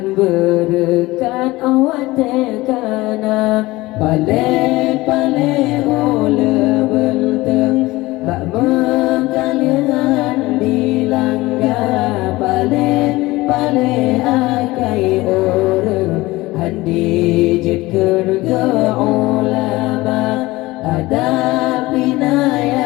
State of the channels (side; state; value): right; quieter; 19.8 dB